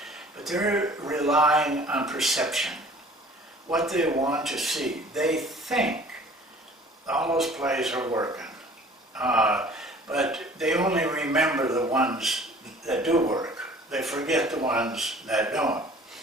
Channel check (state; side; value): normal; both; correlation 0.49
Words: But they're relying on perception, what they want to see. They think all those plays are working, but they only remember the ones that do work. They forget the ones that don't.